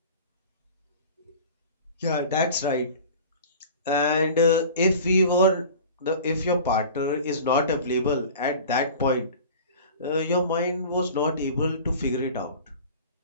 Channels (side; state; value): both; inverted; correlation -0.40